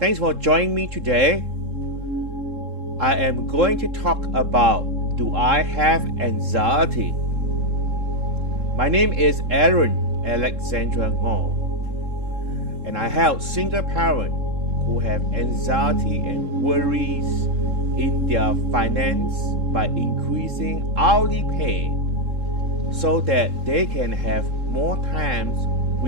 thanks for joining me today. I am going to talk about, do I have anxiety? My name is Aaron Alexandra Ngoh, and I help single parents who have anxiety and worries in their finance by increasing hourly pay so that they can have more times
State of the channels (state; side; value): late; left; 3.7 ms